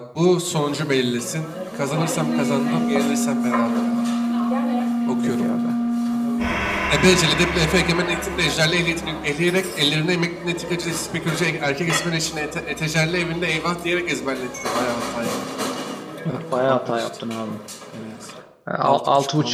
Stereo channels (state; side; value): identical; both; correlation 1.00